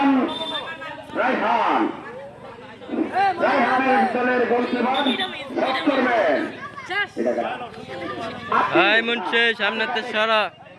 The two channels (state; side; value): identical; both; correlation 1.00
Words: রায়হানের দলের গোলকিপার শট করবেন। সামনে সারা